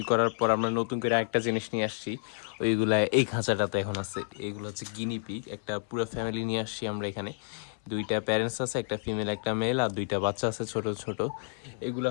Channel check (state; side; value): silent; right; 58 dB below the other